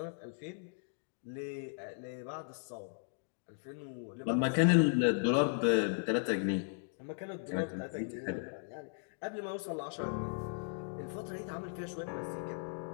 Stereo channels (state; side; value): silent; right; digital silence